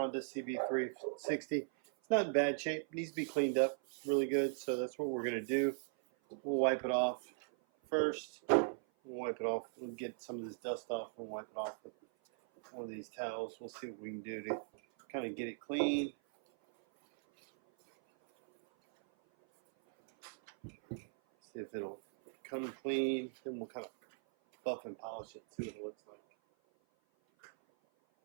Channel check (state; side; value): silent; left; 52 dB below the other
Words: CB360. It's not in bad shape. It needs to be cleaned up really good. So that's what we're going to do. We'll wipe it off first. We'll get some of this dust off and wipe it off with one of these towels. We'll see what we can do to kind of get it clean. See if it'll come clean. Then we'll kind of buff and polish it, see what it looks like.